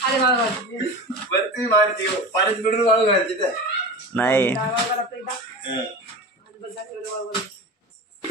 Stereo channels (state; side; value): normal; both; correlation 0.30